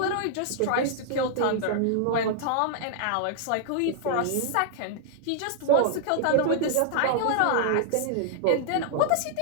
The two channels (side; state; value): both; different; correlation -0.01